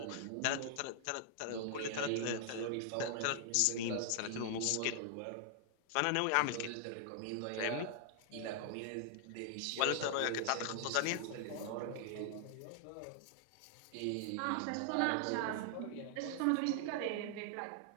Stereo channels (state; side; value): different; both; correlation 0.00